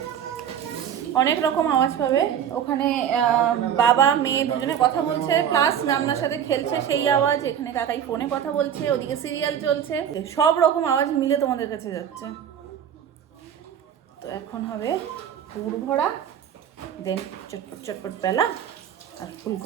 অনেক রকম আওয়াজ পাবে ওখানে, বাবা মেয়ে দুজনে কথা বলছে, প্লাস নামনার সাথে খেলছে সেই আওয়াজ, এখানে কাকাই ফোনে কথা বলছে, ওদিকে সিরিয়াল চলছে, সব রকম আওয়াজ মিলে তোমাদের কাছে যাচ্ছে। তো এখন হবে পুর ভরা, দেন চটপট চটপট পেলা, আর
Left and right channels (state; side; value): quieter; left; 9.0 dB